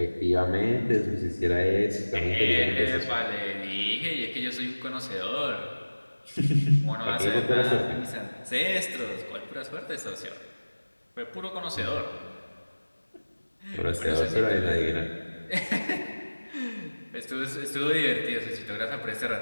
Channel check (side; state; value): both; inverted; correlation -1.00